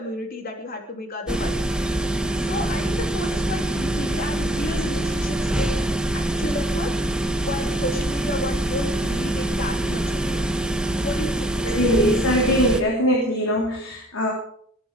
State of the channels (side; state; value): both; normal; correlation 0.57